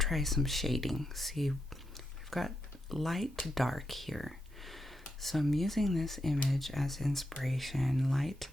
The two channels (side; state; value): both; normal; correlation 0.84